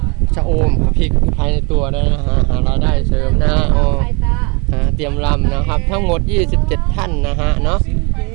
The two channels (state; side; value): quieter; left; 30.8 dB